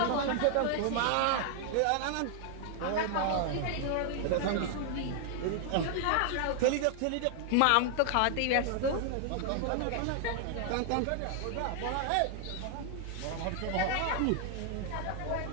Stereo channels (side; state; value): both; different; correlation 0.00